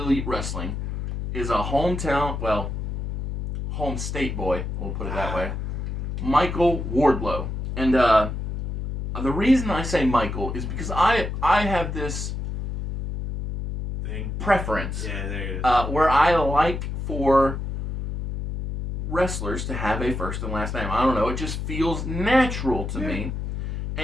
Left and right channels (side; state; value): left; noise; hum, 4 dB below the sound